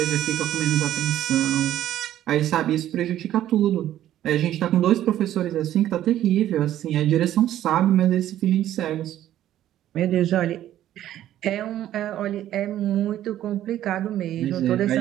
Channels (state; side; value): quieter; left; 12.4 dB